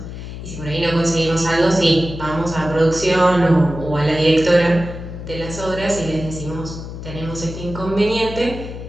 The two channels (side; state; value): left; noise; hum, 10 dB below the sound